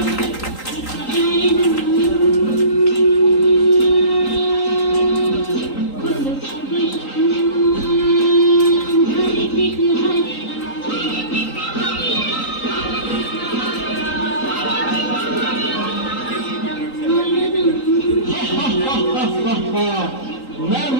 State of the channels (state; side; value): late; right; 3.8 ms